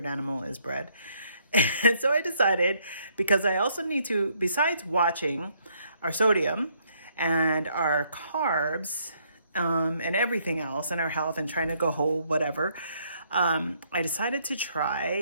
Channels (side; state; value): both; inverted; correlation -0.69